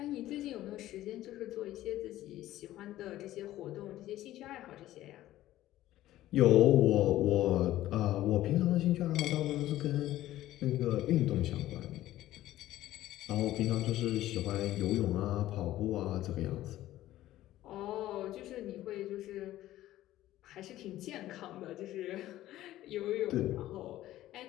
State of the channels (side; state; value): right; quieter; 14.6 dB